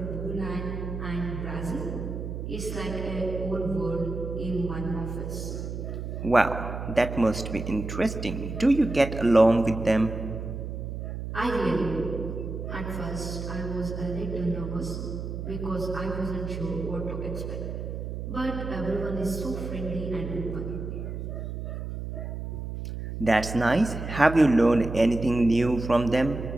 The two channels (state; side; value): noise; right; hum, 6 dB below the sound